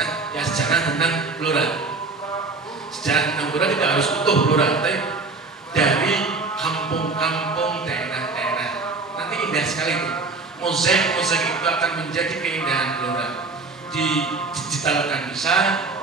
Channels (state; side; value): quieter; left; 3.8 dB